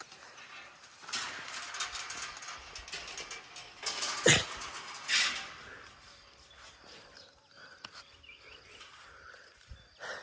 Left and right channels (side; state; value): both; identical; correlation 1.00